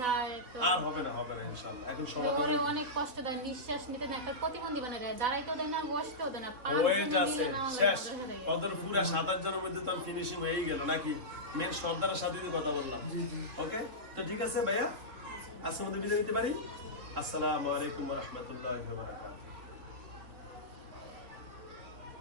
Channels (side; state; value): left; late; 3.7 ms